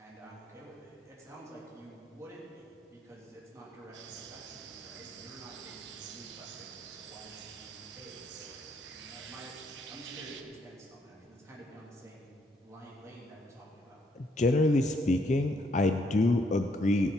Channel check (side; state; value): both; normal; correlation 0.72